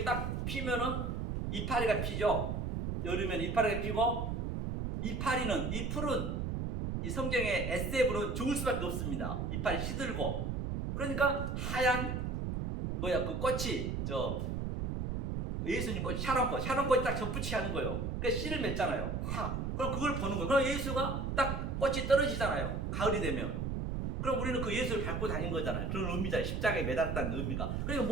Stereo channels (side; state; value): right; noise; rumble, 1 dB below the sound